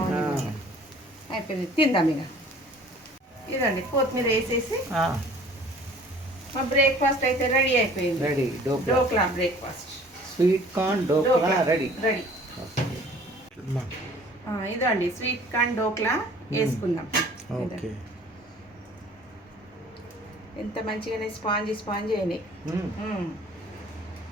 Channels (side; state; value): both; normal; correlation 0.51